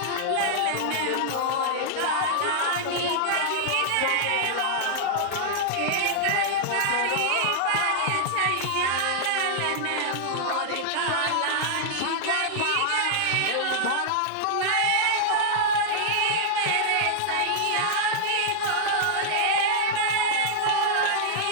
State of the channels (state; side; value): different; both; correlation -0.01